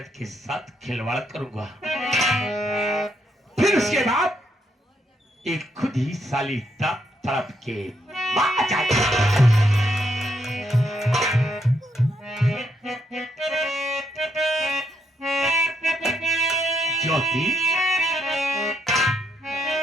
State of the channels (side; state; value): both; normal; correlation 0.76